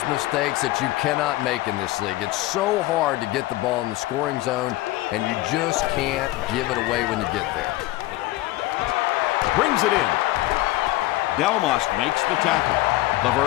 mistakes that you cannot make in this league. It's so hard to get the ball in the scoring zone, and you just can't give it away when you get there. Brings it in. Delmas makes the tackle.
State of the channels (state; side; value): quieter; right; 17.7 dB